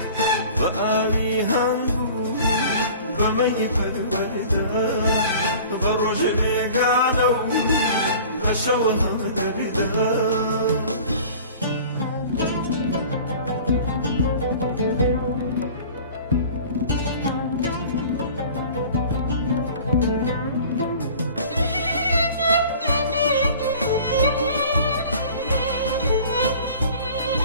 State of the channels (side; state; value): both; inverted; correlation -0.44